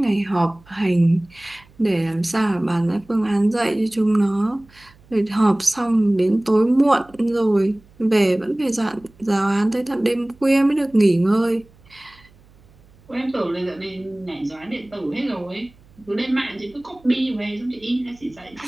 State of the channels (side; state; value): right; noise; hum, 28 dB below the sound